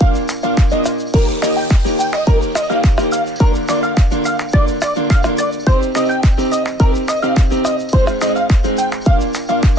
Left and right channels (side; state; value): both; normal; correlation 0.66